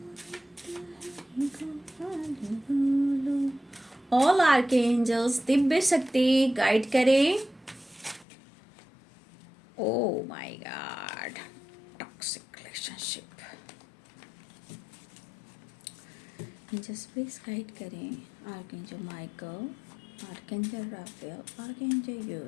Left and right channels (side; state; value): right; drops out; at 8.2 s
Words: ऑल आर्कएंजल्स दिव्य शक्ति गाइड करें। Oh my God, toxic relationship, angels please guide करें। Archangel Michael, archangel Raphael, archangel